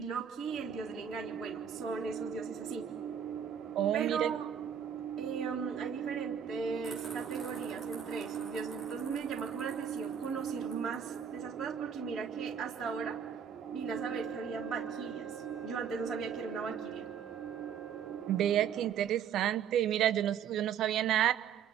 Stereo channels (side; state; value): left; quieter; 8.1 dB